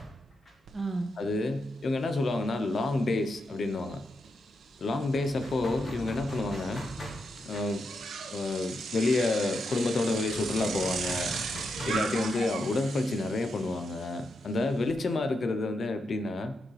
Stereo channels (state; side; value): normal; both; correlation 0.84